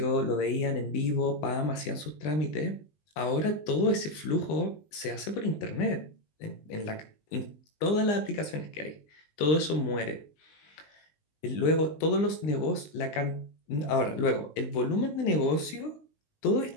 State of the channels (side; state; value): right; late; 19 ms